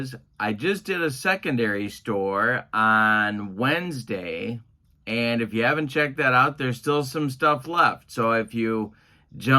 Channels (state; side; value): identical; both; correlation 1.00